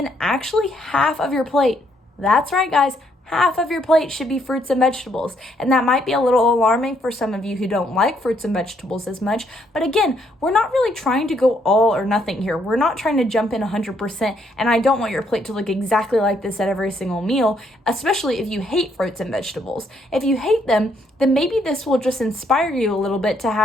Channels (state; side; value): normal; both; correlation 0.71